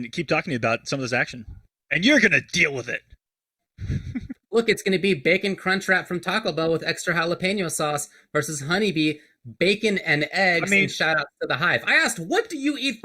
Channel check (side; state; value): both; identical; correlation 1.00